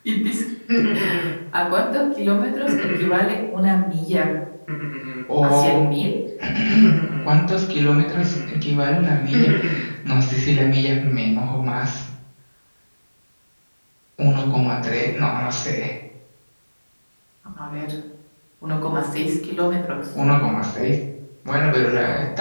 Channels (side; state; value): both; inverted; correlation -1.00